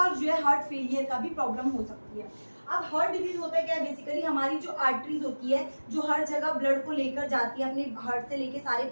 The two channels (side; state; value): both; inverted; correlation -1.00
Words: जो है हार्ट फेलियर का भी प्रॉब्लम हो सकती है। अब हार्ट डिजीज होता है क्या, बेसिकली हमारी जो आर्टरीज होती है, जो हर जगह ब्लड को लेकर जाती है अपने हार्ट से लेके सारे